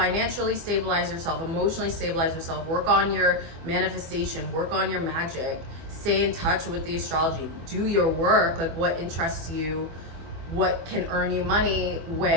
stabilize yourself, emotionally stabilize yourself, work on your manifestation, work on your magic, stay in touch with the astrology, do your work, like what interests you, what can earn you money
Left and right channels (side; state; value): left; late; 24 ms